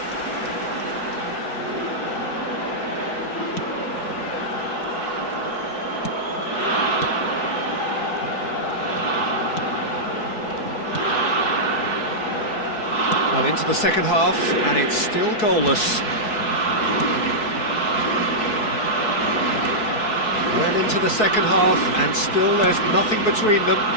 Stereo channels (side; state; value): right; late; 4.6 ms